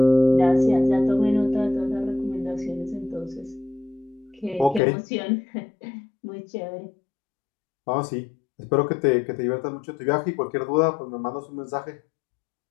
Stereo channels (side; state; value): right; drops out; at 4.8 s